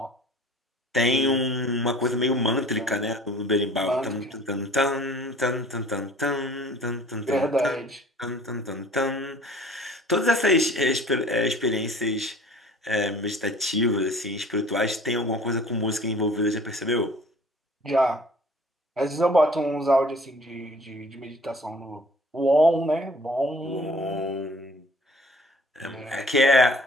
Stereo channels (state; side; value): normal; both; correlation 0.50